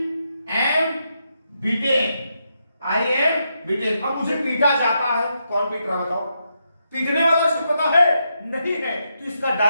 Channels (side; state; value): both; inverted; correlation -0.82